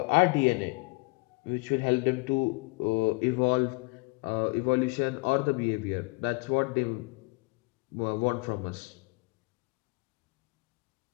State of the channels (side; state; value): right; quieter; 29.1 dB